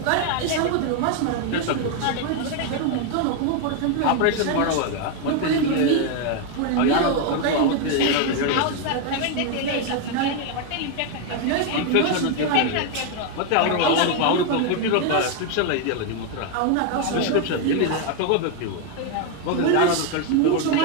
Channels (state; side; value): different; both; correlation 0.01